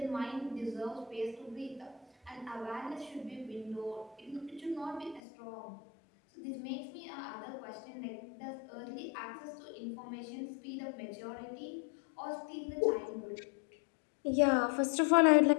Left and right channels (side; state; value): right; drops out; at 5.2 s